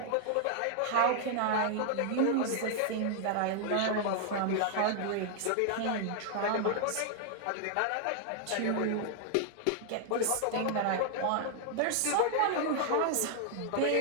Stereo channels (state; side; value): different; both; correlation 0.00